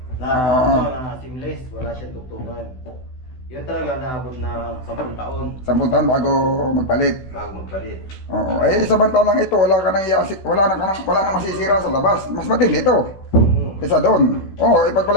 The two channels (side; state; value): right; late; 16 ms